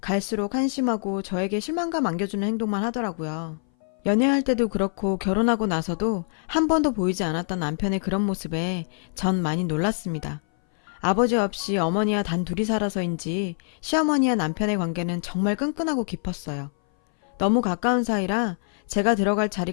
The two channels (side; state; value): right; silent; 59 dB below the other